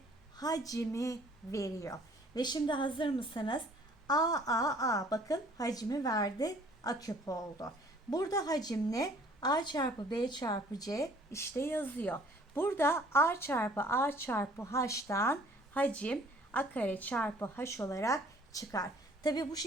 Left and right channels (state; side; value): normal; both; correlation 0.56